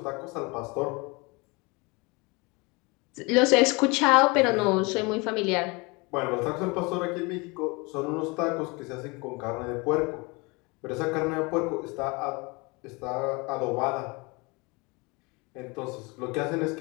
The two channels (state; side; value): quieter; right; 27.2 dB